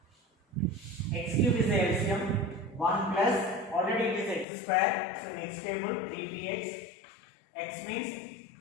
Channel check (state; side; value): drops out; right; at 4.5 s